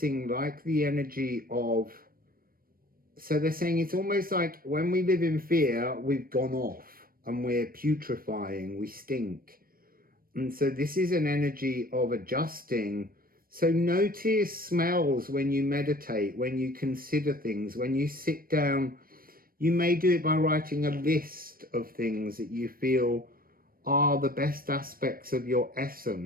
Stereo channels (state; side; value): late; left; 0.42 ms